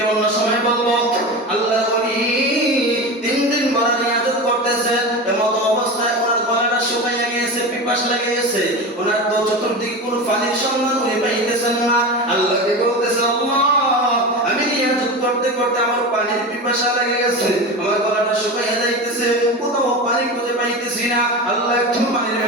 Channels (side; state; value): both; normal; correlation 0.26